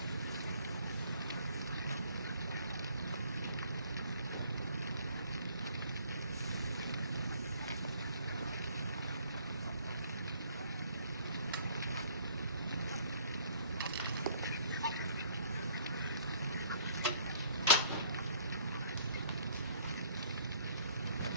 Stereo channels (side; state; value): both; inverted; correlation -0.59